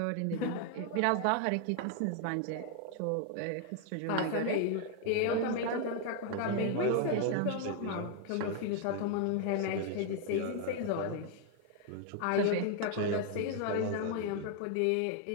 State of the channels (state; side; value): different; both; correlation 0.00